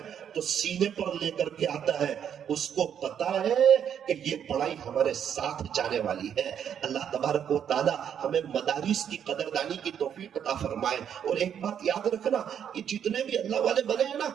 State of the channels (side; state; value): left; quieter; 8.7 dB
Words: تو سینے پر لے کر کے آتا ہے. اس کو پتا ہے کہ یہ پڑھائی ہمارے ساتھ جانے والی ہے. اللہ تبارک و تعالی ہمیں مدارس کی قدردانی کی توفیق عطا فرمائے. اور ایک بات یاد رکھنا, یہ جتنے بھی اللہ والے بنے ہیں نا,